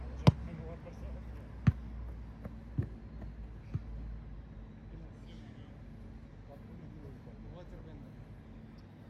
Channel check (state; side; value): identical; both; correlation 1.00